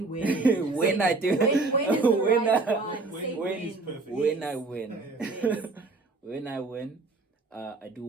Win. When I do, when is the right one? When I win, when I win, I do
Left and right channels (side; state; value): left; quieter; 3.6 dB